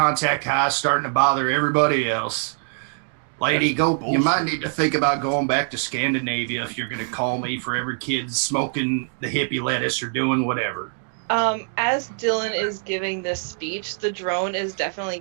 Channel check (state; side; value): silent; left; 60 dB below the other